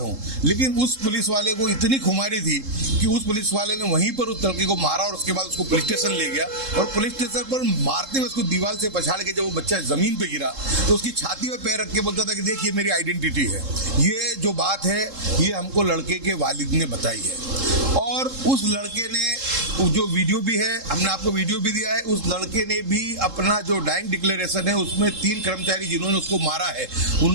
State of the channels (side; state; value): left; late; 3.7 ms